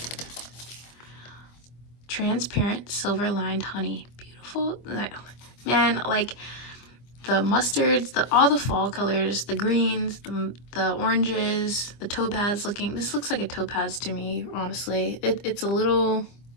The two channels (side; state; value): right; late; 25 ms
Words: Transparent silver lined honey. Beautiful. Man, like the mustards, all the fall colors, the greens, the oranges, the topaz looking. This looks like a topaz to me, honestly. It's a little